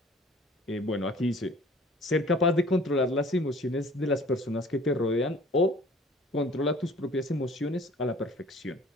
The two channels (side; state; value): both; normal; correlation 0.50